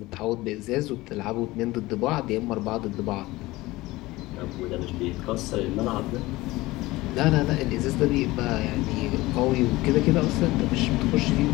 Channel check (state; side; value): quieter; right; 19.5 dB